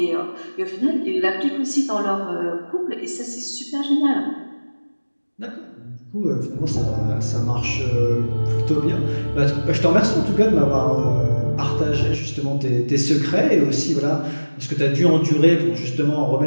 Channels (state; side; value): inverted; both; correlation -1.00